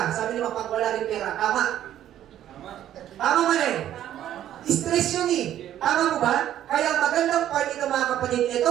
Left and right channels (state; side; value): quieter; left; 11.6 dB